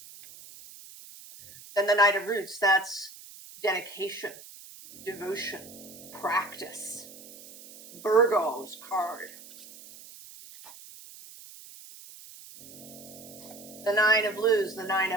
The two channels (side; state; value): right; noise; hiss, 18 dB below the sound